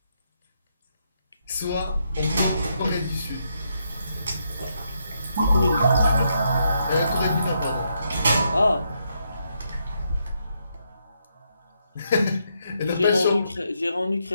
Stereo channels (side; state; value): both; inverted; correlation -0.78